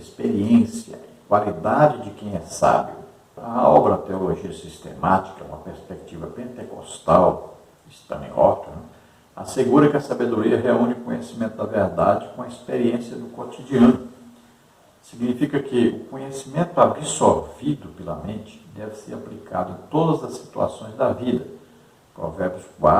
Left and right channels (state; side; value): identical; both; correlation 1.00